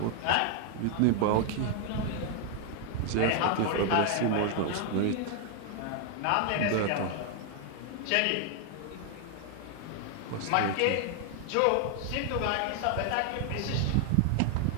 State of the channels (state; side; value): different; both; correlation 0.00